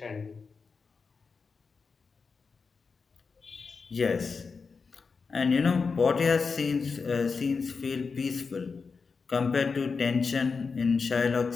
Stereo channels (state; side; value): quieter; right; 4.9 dB